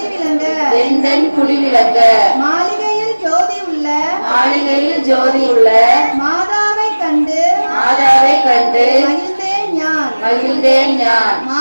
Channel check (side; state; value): both; inverted; correlation -1.00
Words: எந்தன் குடிவிளங்க, மாளிகையில் ஜோதி உள்ள மாளிகையில் ஜோதி உள்ள மாதாவை கண்டு மாதாவை கண்டு மகிழ்ந்தேன் ஞான். மகிழ்ந்தேன் ஞான்.